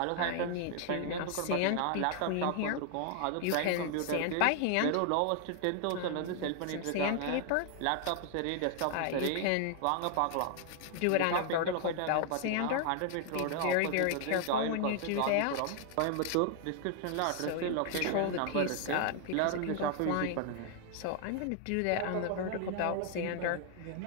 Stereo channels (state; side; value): different; both; correlation 0.00